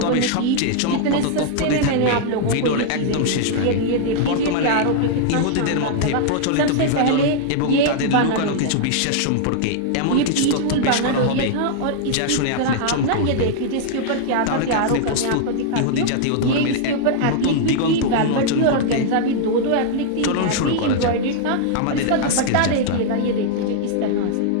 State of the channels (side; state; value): both; different; correlation -0.01